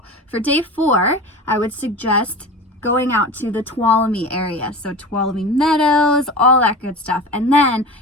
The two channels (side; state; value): both; normal; correlation 0.32